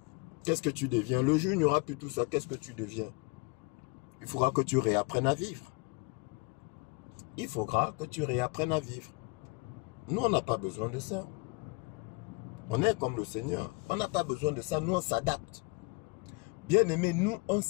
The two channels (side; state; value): right; quieter; 27.8 dB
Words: Qu'est-ce que tu deviens? Le jour où il n'y aura plus tout ça, qu'est-ce que tu deviens? Il faudra que tu réapprennes à vivre. Il faudra que tu réapprennes à vivre. Nous, on n'a pas besoin de ça. On est comme le Seigneur. On n'a pas besoin de ça. Nous, on s'adapte. Bien-aimés, nous, on